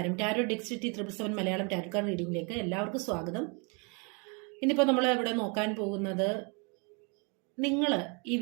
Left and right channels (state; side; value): quieter; left; 33.5 dB